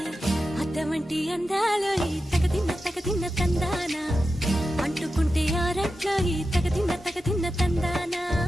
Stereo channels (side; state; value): both; normal; correlation 0.91